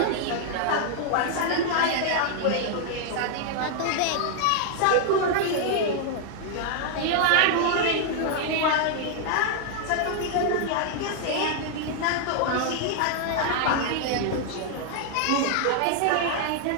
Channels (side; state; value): both; different; correlation 0.00